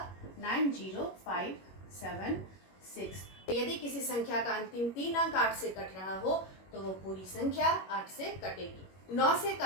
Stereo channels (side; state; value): right; late; 21 ms